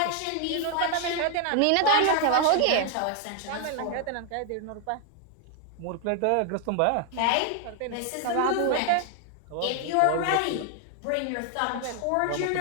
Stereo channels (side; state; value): both; different; correlation 0.00